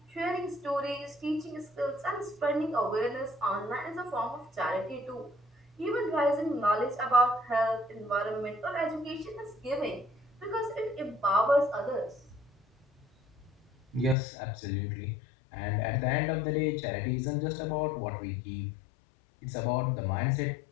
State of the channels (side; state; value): right; drops out; at 14.2 s